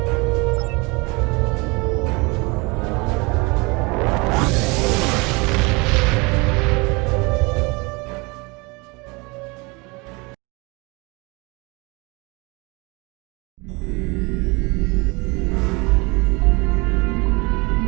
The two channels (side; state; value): left; quieter; 27.1 dB